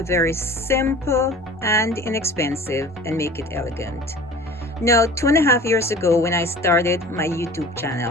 very simple and inexpensive and make it elegant. Now, 2.5 years ago when I started my YouTube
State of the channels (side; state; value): both; normal; correlation 0.43